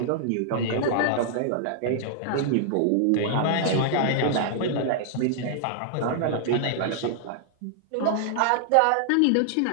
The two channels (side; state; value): both; different; correlation -0.01